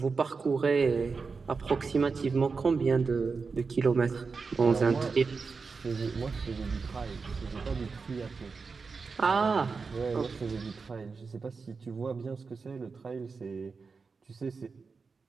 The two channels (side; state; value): left; quieter; 4.8 dB